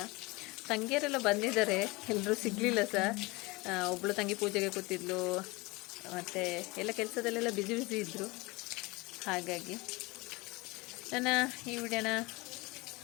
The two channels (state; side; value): quieter; right; 24.0 dB